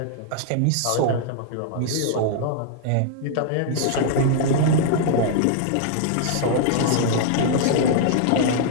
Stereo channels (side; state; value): both; different; correlation -0.01